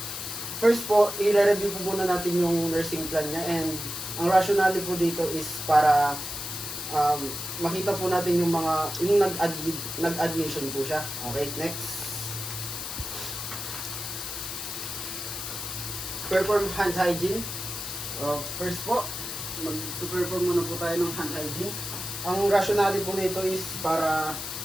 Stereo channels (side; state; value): left; noise; hiss, 6 dB below the sound